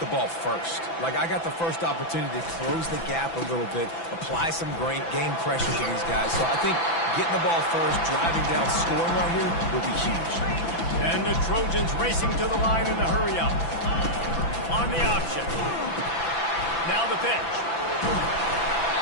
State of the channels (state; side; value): late; right; 6.0 ms